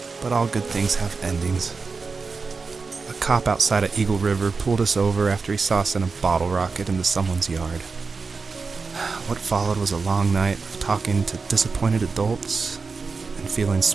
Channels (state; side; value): quieter; left; 4.5 dB